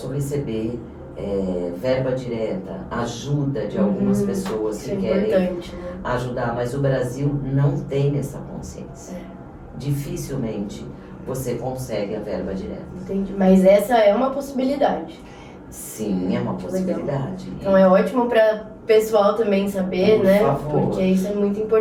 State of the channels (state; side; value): identical; both; correlation 1.00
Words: receber verba direta, ajuda de algumas pessoas que querem ajudar, mas o Brasil não tem essa consciência. Dificilmente você consegue a verba direta. Entendi, mas essa é uma possibilidade. Sim, é uma possibilidade. Então é ótimo para pessoal também saber, Por né? favor. Porque isso é muito